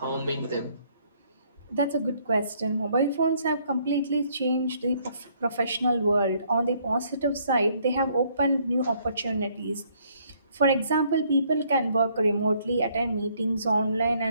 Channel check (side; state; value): both; inverted; correlation -0.66